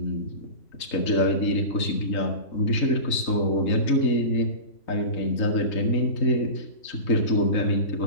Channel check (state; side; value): late; right; 3.8 ms